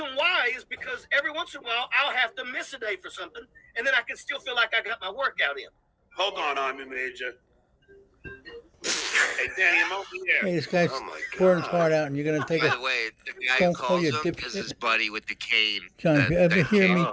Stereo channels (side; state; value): both; identical; correlation 1.00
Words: why is because every once in a while I'll have to miss a day for something, and then I can still feel like I got my workout in. Hold on, Army Major. Hey, Danny, I'm over here. Hey, this guy's Oh, my pouring his God. heart out, and you're going to take By it. the way, the guy who Don't call calls you him a dipshit. is his buddy with the cane. John, if you ever that hear me